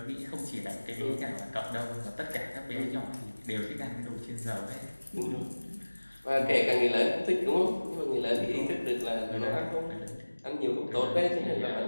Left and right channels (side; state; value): both; inverted; correlation -1.00